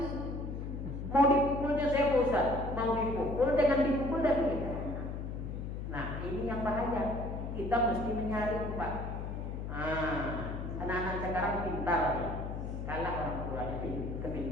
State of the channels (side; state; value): left; noise; hum, 5 dB below the sound